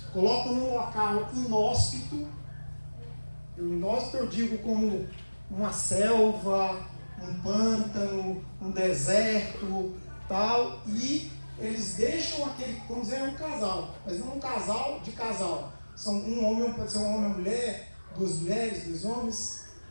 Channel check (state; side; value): inverted; both; correlation -1.00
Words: colocam num local inóspito. Inóspito eu digo como uma selva, um pântano, um deserto, tal, e eles deixam aquele, vamos dizer, um casal, mas não um casal de casal. São um homem, pode ser um homem e uma mulher, 2 mulheres, 2 homens,